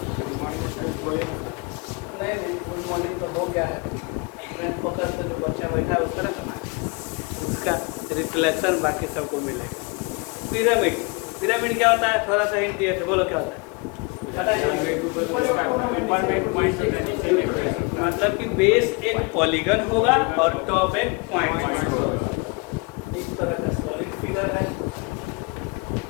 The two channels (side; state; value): right; quieter; 29.5 dB